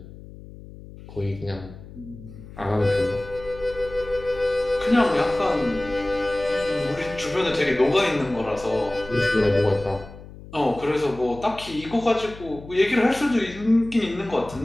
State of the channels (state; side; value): noise; left; hum, 17 dB below the sound